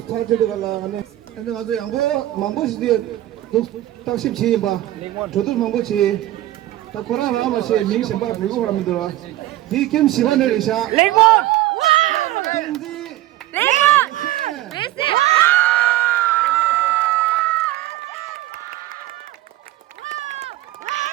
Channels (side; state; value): left; quieter; 15.2 dB